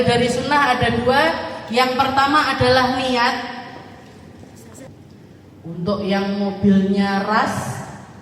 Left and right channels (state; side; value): identical; both; correlation 1.00